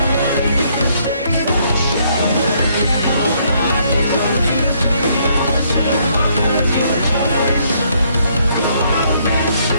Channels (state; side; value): inverted; both; correlation -0.69